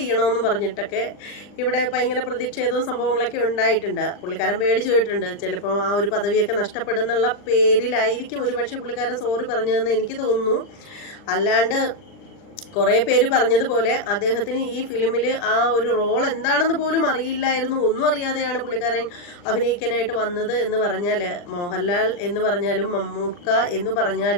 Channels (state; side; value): late; right; 40 ms